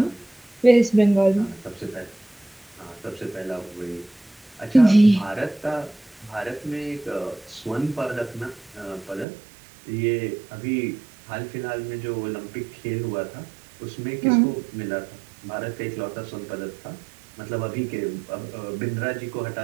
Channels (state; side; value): drops out; left; at 9.2 s